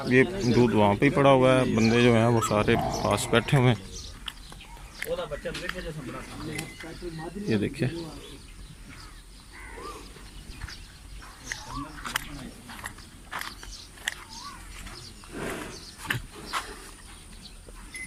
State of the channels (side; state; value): both; identical; correlation 1.00